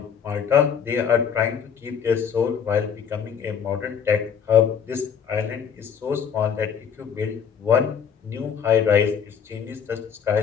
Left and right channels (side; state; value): right; quieter; 7.5 dB